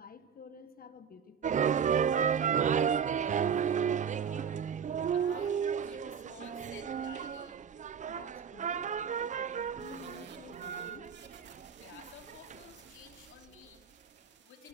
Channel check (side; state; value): left; quieter; 7.3 dB